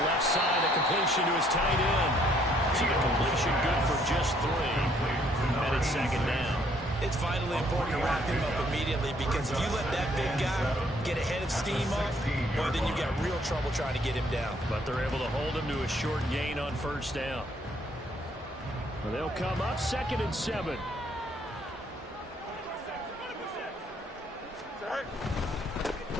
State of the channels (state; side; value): normal; both; correlation 0.66